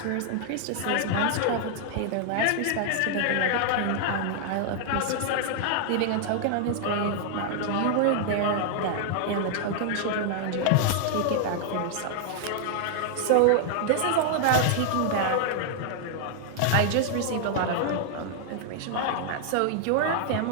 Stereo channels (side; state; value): both; different; correlation 0.00